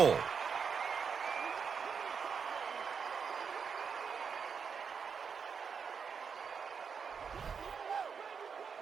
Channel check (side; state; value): left; quieter; 6.2 dB